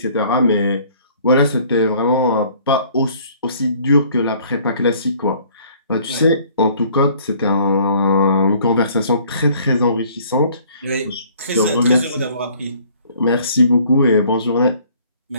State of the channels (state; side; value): inverted; both; correlation -0.57